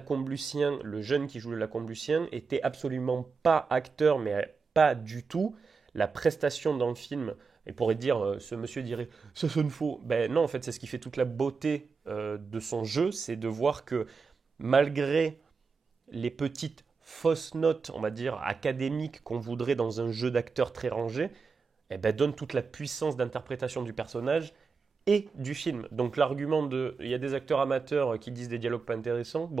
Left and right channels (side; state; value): left; quieter; 5.0 dB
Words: le jeune qui joue le Lacombe-Lucien était absolument pas acteur, mais pas du tout. La prestation dans le film, et pourrait dire, ce monsieur dirait, ça sonne faux. Ben non, en fait, c'est ce qui fait toute la beauté de son jeu, c'est de voir que malgré les petites fausses notes, on va dire, académiques qu'on voudrait dans un jeu d'acteur très rangé, eh ben, donne toute la puissance d'interprétation du personnage et du film. Donc l'argument de il y a des acteurs amateurs qui disent des dialogues pas intéressants,